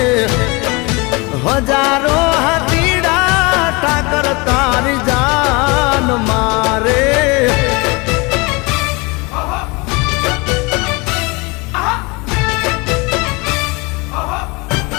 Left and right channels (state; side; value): quieter; right; 27.0 dB